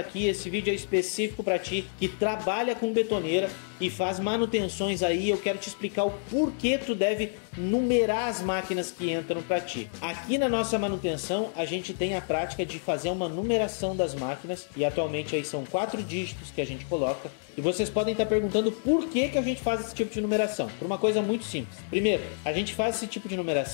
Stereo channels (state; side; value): silent; right; digital silence